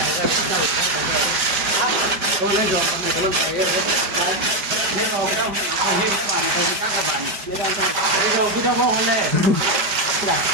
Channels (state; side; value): late; left; 5.0 ms